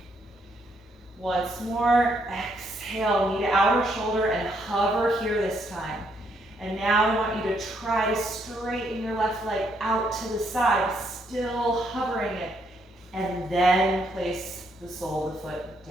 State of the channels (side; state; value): both; normal; correlation 0.73